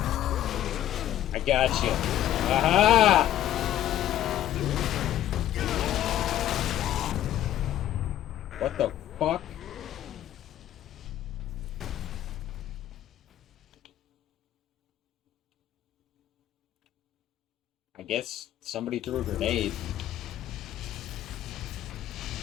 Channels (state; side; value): quieter; right; 12.3 dB